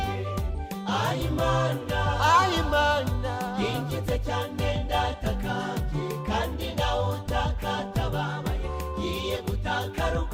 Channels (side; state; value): both; identical; correlation 1.00